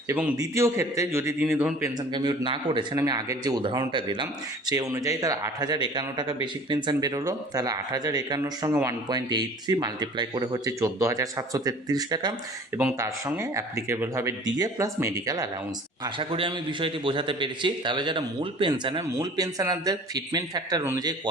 এবং দ্বিতীয় ক্ষেত্রে যদি তিনি ধরুন পেনশন কমিউট না করেছেন, আমি আগের যে উদাহরণটা দিলাম সেই অনুযায়ী তার 8,051 টাকা বেসিক পেনশন বেরোলো, তাহলে 8,051 সঙ্গে 1.83 মাল্টিপ্লাই করে হচ্ছে 14,733 টাকা এবং তার সঙ্গে অ্যাপ্লিকেবল হবে ডিএ প্লাস মেডিকেল অ্যালাউন্স। আশা করি আমি বিষয়টি বোঝাতে পেরেছি। তাহলে যারা মূল পেনশনারদের ফিটমেন্ট ফ্যাক্টর অনুযায়ী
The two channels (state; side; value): normal; both; correlation 0.46